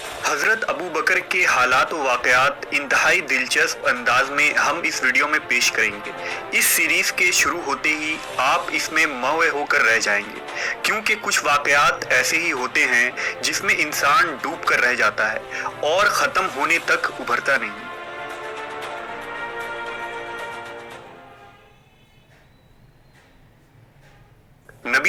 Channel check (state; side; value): identical; both; correlation 1.00